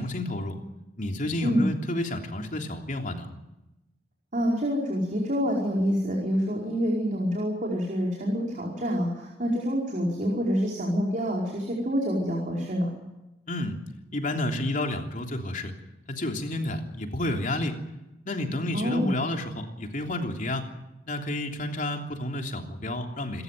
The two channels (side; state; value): both; normal; correlation 0.69